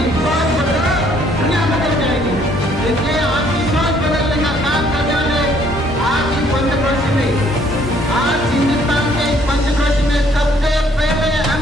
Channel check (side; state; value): both; normal; correlation 0.63